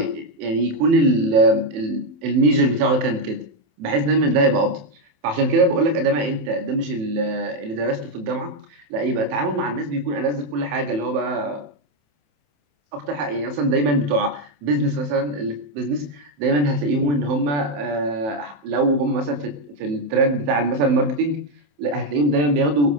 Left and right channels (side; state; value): left; late; 27 ms